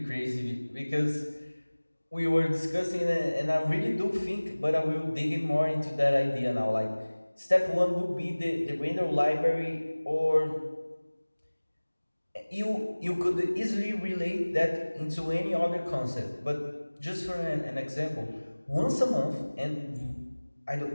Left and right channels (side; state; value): both; inverted; correlation -1.00